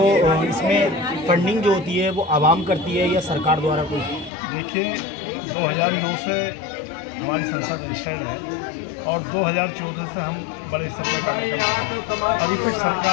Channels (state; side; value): drops out; right; at 4.3 s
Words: इसमें फंडिंग जो होती है वो आवाम करती है या सरकार द्वारा कोई? देखिए, 2009 से हमारी संस्था रजिस्टर्ड है और 2014 से हम बड़े स्तर पर कार्य कर रहे हैं। अभी तक